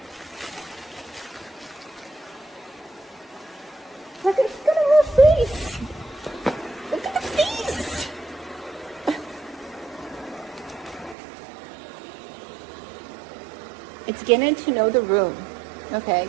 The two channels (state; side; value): drops out; left; at 11.2 s